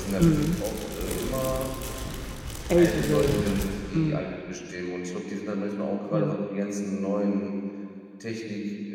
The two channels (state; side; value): identical; both; correlation 1.00